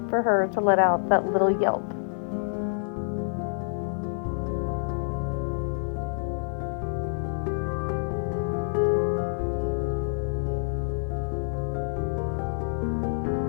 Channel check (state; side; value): silent; right; digital silence